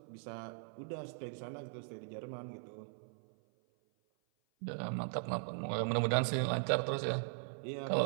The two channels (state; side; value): silent; left; 52 dB below the other